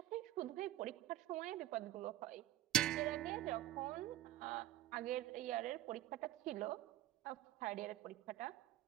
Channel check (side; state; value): left; quieter; 14.2 dB